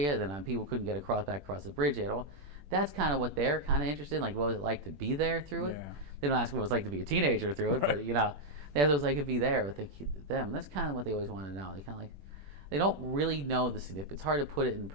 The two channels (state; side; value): late; left; 21 ms